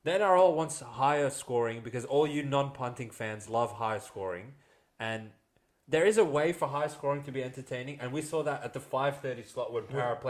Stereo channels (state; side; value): identical; both; correlation 1.00